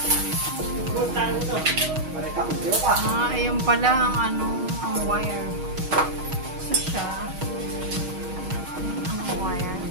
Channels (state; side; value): late; left; 6.4 ms